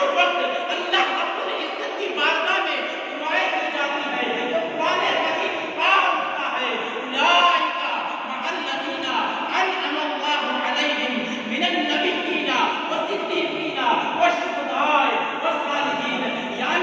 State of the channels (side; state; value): both; identical; correlation 1.00